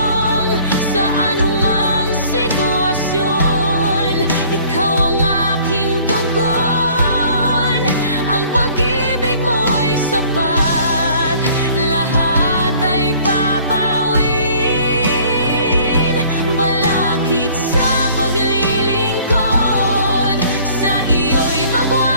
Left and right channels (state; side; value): inverted; both; correlation -0.54